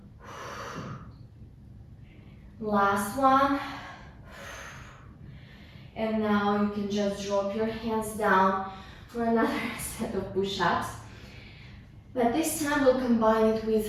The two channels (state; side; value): identical; both; correlation 1.00